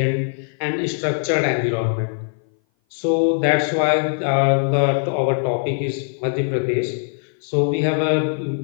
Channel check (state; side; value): silent; right; 58 dB below the other